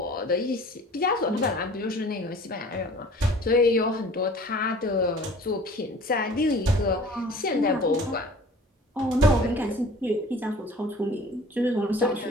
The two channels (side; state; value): both; normal; correlation 0.47